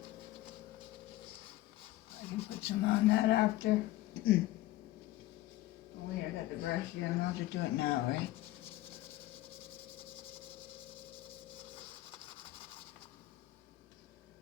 I can put some on that after. Oh wait, I got the brush here. I'm allowed to do it now, right?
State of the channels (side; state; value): right; quieter; 16.4 dB